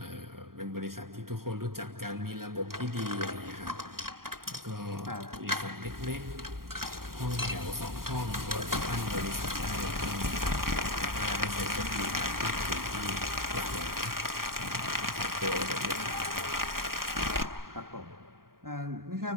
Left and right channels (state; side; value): late; left; 0.92 ms